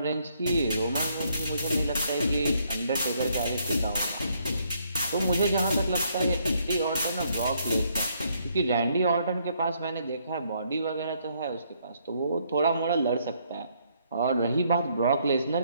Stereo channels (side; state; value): both; inverted; correlation -0.70